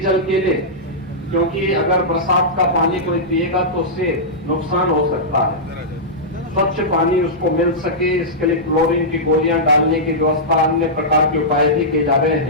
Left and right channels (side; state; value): both; normal; correlation -0.12